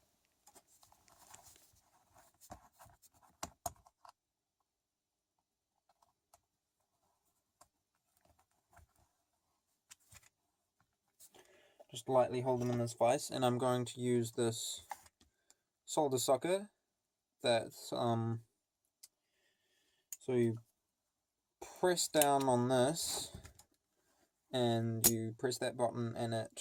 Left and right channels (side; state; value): both; identical; correlation 1.00